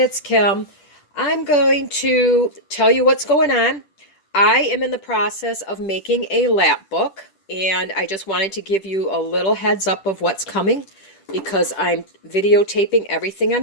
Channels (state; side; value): late; right; 10 ms